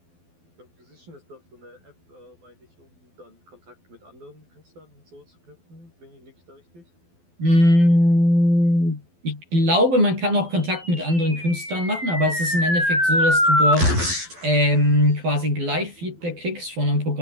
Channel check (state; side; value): late; left; 12 ms